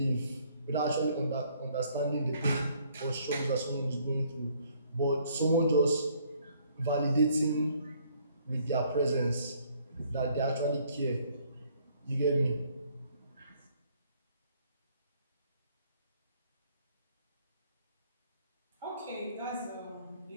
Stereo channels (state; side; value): inverted; both; correlation -0.63